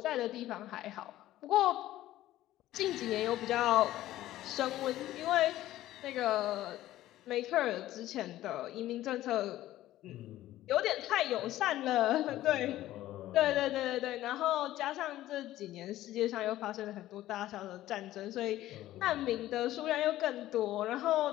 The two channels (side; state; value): right; quieter; 14.6 dB